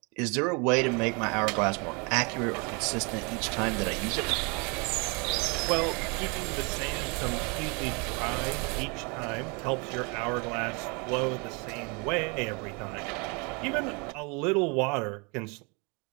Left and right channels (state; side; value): quieter; left; 31.7 dB